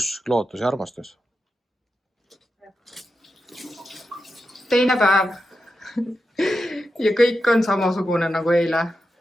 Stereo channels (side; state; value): both; normal; correlation 0.89